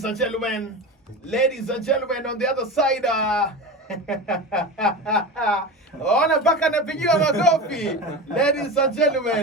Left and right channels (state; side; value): normal; both; correlation 0.26